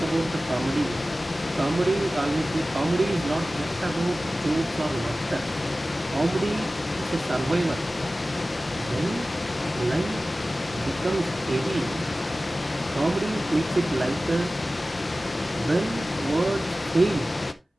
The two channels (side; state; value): both; normal; correlation 0.96